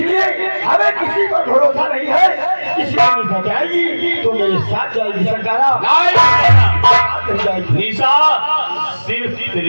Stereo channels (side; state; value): both; inverted; correlation -1.00